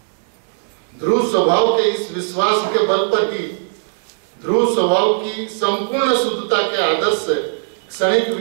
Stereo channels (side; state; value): left; silent; digital silence